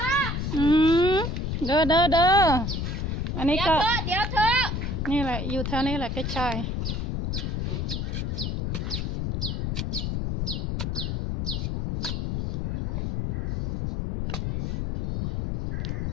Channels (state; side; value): noise; left; rumble, 1 dB below the sound